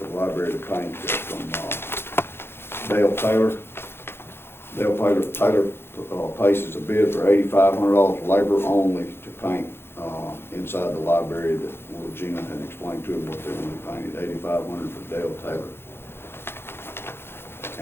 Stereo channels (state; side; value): late; right; 0.11 ms